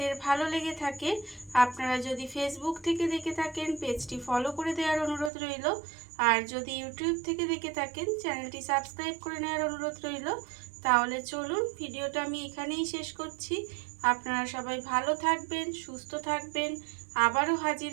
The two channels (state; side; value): drops out; left; at 5.3 s